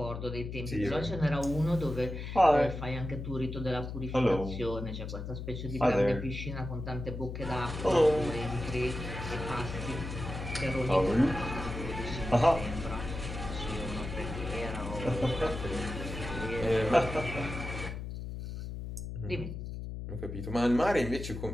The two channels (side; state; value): left; noise; hum, 7 dB below the sound